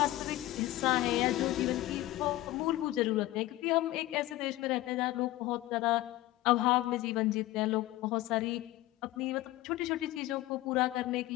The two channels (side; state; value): right; quieter; 16.7 dB